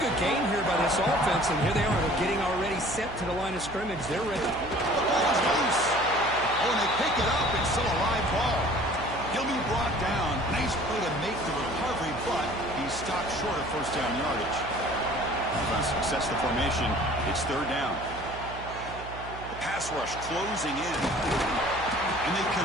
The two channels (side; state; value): right; noise; hum, 13 dB below the sound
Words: good gain here by this offense, and here they are. They're getting already set to the line of scrimmage. They're ready. The ball is loose. Oh, and they pick it up. It's still a live ball. He'll be brought down. Nice play to make the recovery, but he's stopped short of first down yardage. Offense success the formation. It's 3rd down. The pass rush closing in. And they